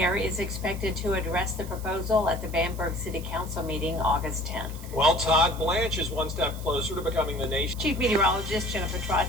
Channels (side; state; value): right; noise; hiss, 17 dB below the sound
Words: is expected to address the proposal at the Bamberg City Council meeting August 10th. Well, Todd Blanche is one step closer to becoming the nation's Chief Meteorologist Jennifer